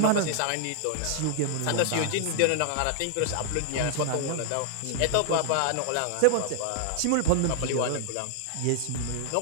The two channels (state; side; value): different; both; correlation 0.00